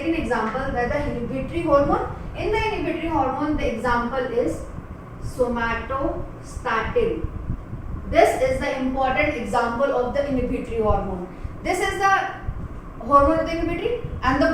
example, that the inhibitory hormone. In the inhibitory hormone, the example is somatostatin. This is the important example of the inhibitory hormone. This is the hormone of the inhibitory, and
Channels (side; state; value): both; identical; correlation 1.00